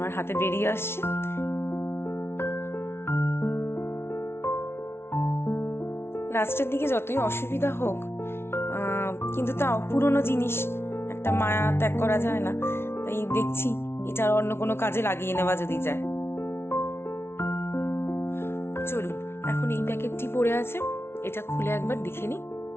হাতে বেরিয়ে আসছে। লাস্টের দিকে যতই অসুবিধা হোক, কিন্তু তাও পুরনো জিনিস একটা মায়া ত্যাগ করা যায় না, তাই দেখছি এটা অন্য কোনো কাজে লাগিয়ে নেওয়া যদি যায়। চলুন এখন এই প্যাকেটটি পড়ে আছে, এটা খুলে একবার দেখে নিই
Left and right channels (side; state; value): right; late; 0.12 ms